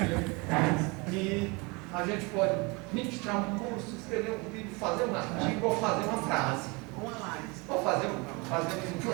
que a gente pode ministrar um curso, escrever um vídeo, fazer um artigo ou fazer uma frase. Uma live. Ou fazer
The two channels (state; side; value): quieter; left; 27.9 dB